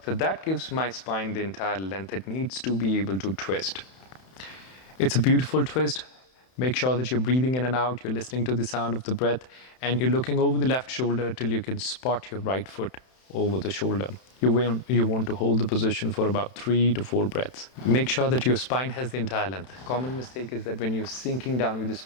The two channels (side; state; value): right; late; 31 ms